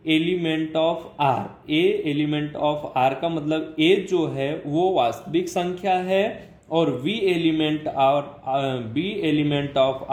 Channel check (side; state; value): both; identical; correlation 1.00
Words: element of r, a element of r का मतलब a जो है वो वास्तविक संख्या है, और b एलिमेंट ऑफ